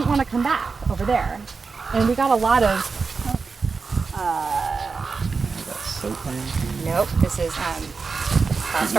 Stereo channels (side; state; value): left; quieter; 4.7 dB